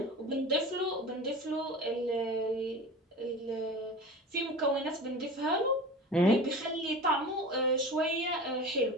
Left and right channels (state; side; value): normal; both; correlation 0.34